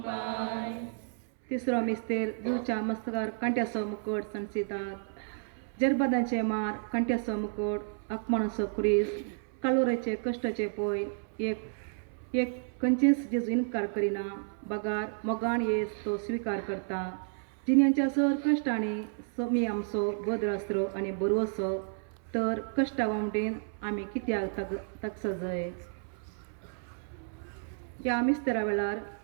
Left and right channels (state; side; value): silent; left; 57 dB below the other